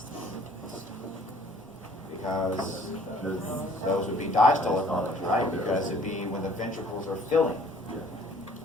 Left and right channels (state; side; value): normal; both; correlation 0.56